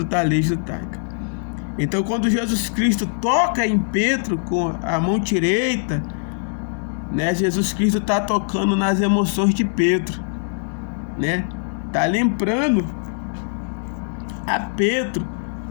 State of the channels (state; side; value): silent; right; 64 dB below the other